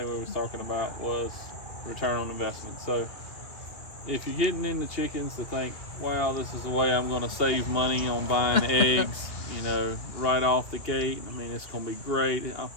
we was talking about was return on investment. So if you're getting into chickens to think, wow, this is the way I'm going to save money on buying eggs, right off the gate. I mean, it's going to be great.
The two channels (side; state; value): right; late; 2.4 ms